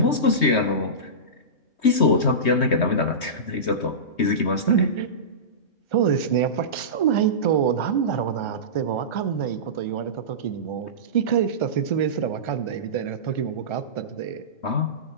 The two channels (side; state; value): right; late; 3.2 ms